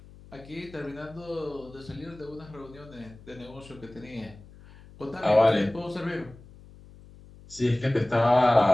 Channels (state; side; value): noise; left; hum, 21 dB below the sound